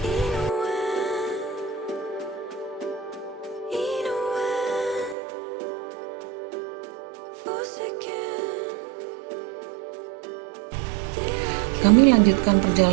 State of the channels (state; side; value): drops out; left; at 5.2 s